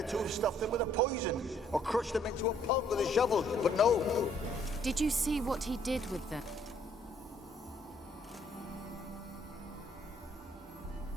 to have stuffed them with a poison, or crushed them into a pulp with a shovel, but no. Did you see what he did with them?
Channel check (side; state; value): both; normal; correlation 0.65